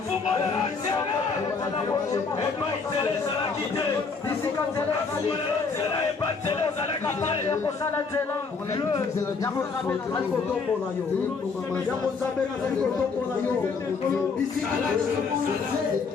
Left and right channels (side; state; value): right; quieter; 4.8 dB